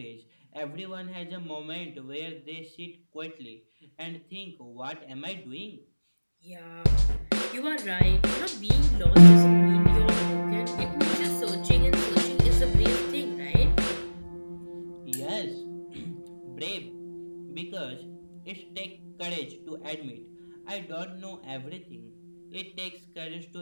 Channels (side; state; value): both; inverted; correlation -1.00